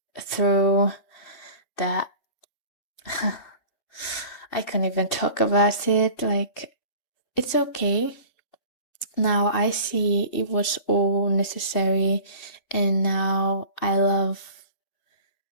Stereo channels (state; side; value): late; right; 2.6 ms